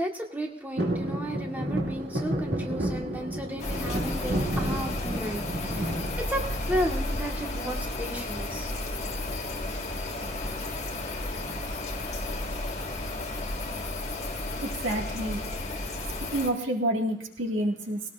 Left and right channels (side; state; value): both; normal; correlation 0.59